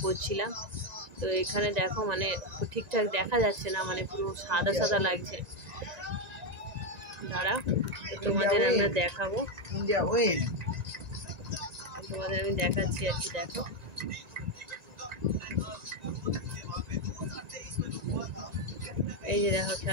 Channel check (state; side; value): late; left; 1.9 ms